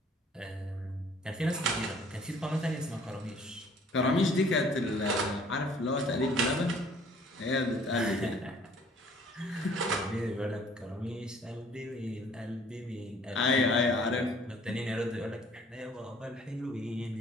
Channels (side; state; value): both; normal; correlation 0.56